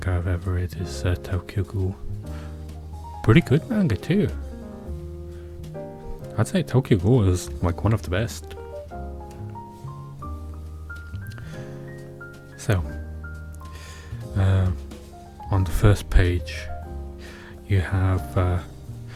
I've ever read is Tokyo Ghoul. Pretty good manga too. I'd say Tokyo Ghoul is like one of the best. So, on the first page you have a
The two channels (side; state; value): both; identical; correlation 1.00